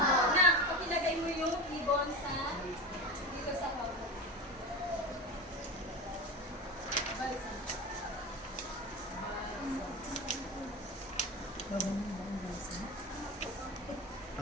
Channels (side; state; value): both; normal; correlation 0.25